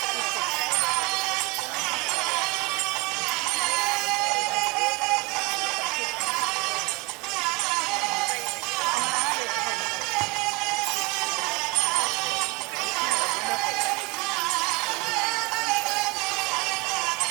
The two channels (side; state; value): left; quieter; 26.6 dB